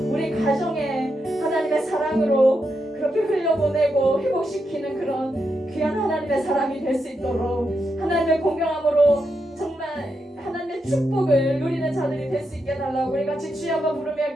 우리 가정에 하나님의 사랑으로 그렇게 흘려보내고 회복시키는 그런 귀한 하나님의 사람이 될 수 있도록 하나님의 공경함으로 정말 하나님의 축복을 누리는 자들이 될 수 있게 해달라고 우리 같이 주여 한번 부르며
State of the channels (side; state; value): both; normal; correlation 0.84